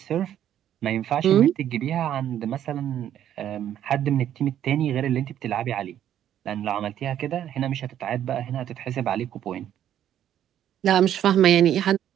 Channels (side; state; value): left; quieter; 10.8 dB